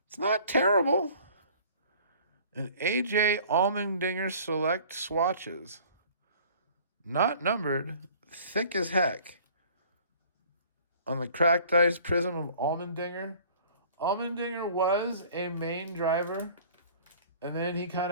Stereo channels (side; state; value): both; inverted; correlation -0.51